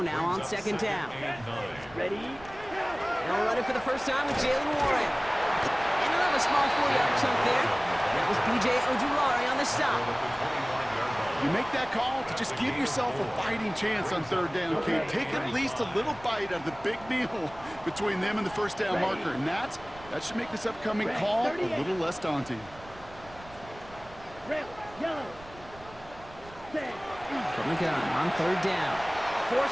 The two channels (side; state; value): right; noise; rumble, 20 dB below the sound